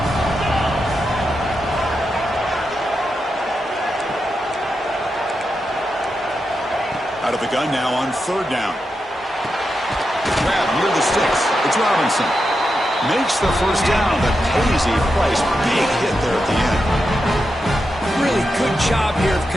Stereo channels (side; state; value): both; normal; correlation 0.87